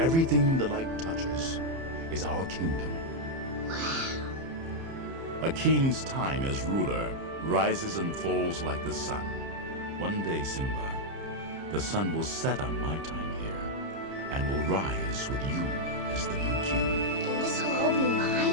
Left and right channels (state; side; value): late; left; 30 ms